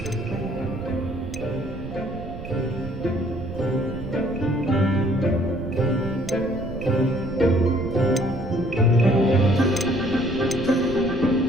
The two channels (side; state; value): right; noise; rumble, 10 dB below the sound